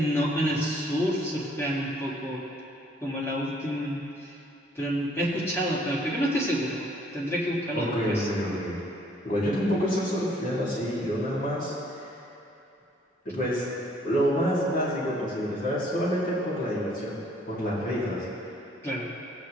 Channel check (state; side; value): normal; both; correlation 0.62